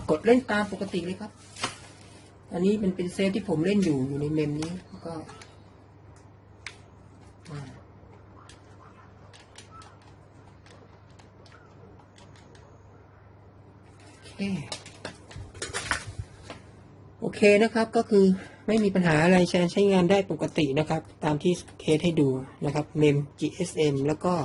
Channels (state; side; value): identical; both; correlation 1.00